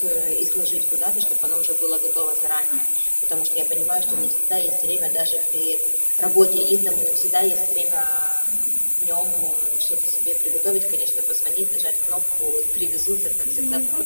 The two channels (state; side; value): inverted; both; correlation -1.00